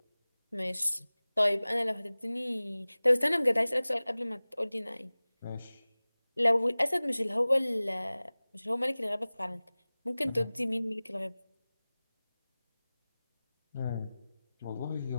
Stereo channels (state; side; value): inverted; both; correlation -0.99